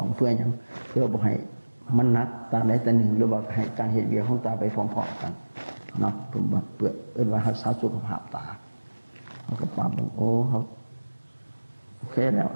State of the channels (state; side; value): inverted; both; correlation -1.00